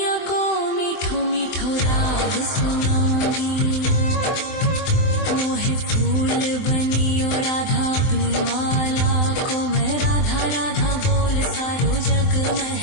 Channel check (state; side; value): late; right; 23 ms